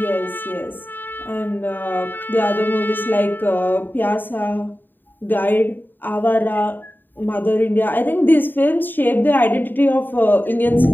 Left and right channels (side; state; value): right; late; 0.092 ms